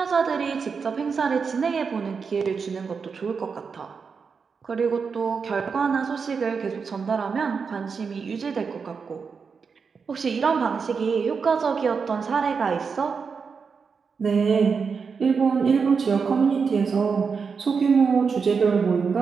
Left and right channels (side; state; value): left; quieter; 5.5 dB